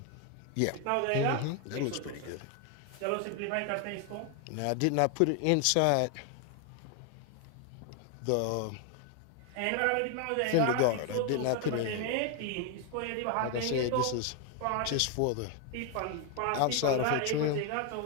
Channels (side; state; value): both; different; correlation 0.01